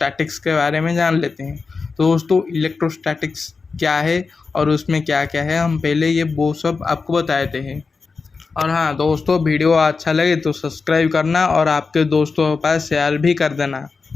के बारे में जान लेते हैं। तो दोस्तों, इलेक्ट्रोस्टैटिक्स क्या है और उसमें क्या क्या है, हम पहले वो सब आपको बताए थे। और हाँ दोस्तों, वीडियो अच्छा लगे तो सब्सक्राइब करना और आपके दोस्तों के पास शेयर भी कर देना।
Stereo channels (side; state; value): right; quieter; 4.6 dB